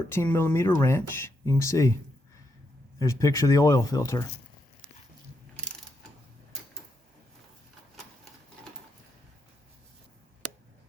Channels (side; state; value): both; normal; correlation 0.81